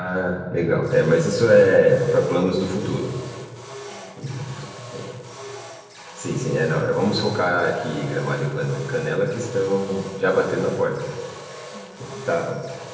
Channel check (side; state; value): both; identical; correlation 1.00